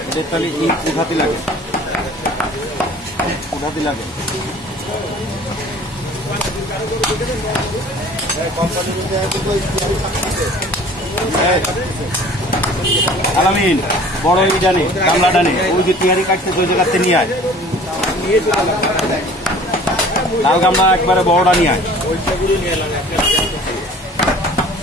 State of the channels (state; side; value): normal; both; correlation 0.47